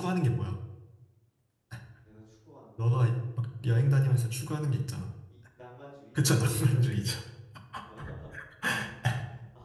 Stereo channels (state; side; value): identical; both; correlation 1.00